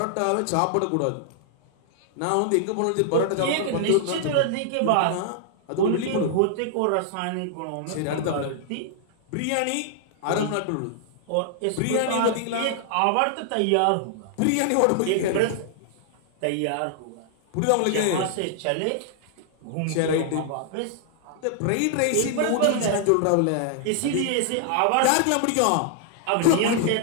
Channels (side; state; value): both; different; correlation -0.01